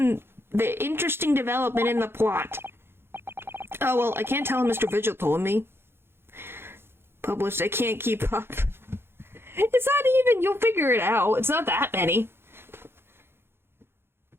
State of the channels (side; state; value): left; late; 0.11 ms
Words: the interesting development in the plot. Oh, well, I can't tell him Mr. Vigil told me. Published, I can't keep up. It's not even, you'll figure it out. It's not that many.